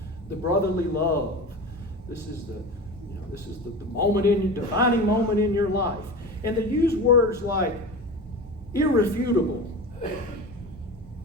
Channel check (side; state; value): both; normal; correlation 0.30